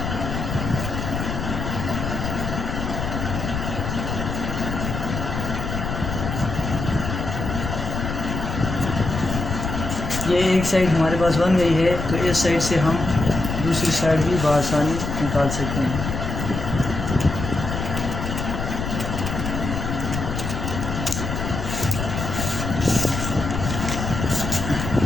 ये एक साइड हमारे पास बन गई है तो इस साइड से हम दूसरी साइड भी बआसानी निकाल सकते हैं।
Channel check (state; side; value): noise; left; rumble, 4 dB below the sound